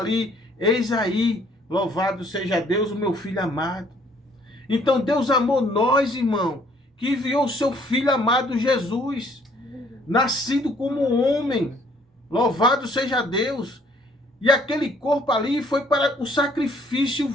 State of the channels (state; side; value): normal; both; correlation 0.62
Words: eis aí, louvado seja Deus, o meu filho amado. Então Deus amou nós, irmão, que enviou o seu filho amado Jesus, nascido como homem. Louvado seja Deus. E aquele corpo ali foi para o sacrifício